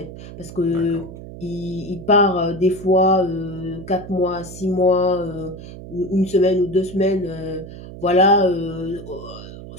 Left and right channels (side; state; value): right; noise; hum, 13 dB below the sound